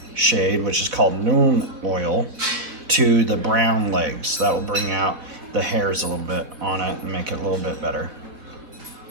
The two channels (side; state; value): left; late; 4.3 ms